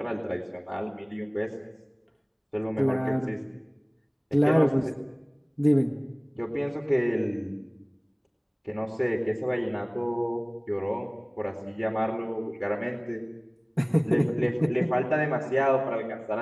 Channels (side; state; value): both; identical; correlation 1.00